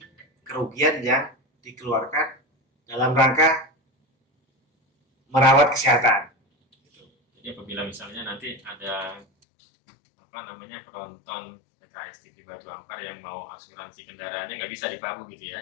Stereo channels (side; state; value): right; drops out; at 9.2 s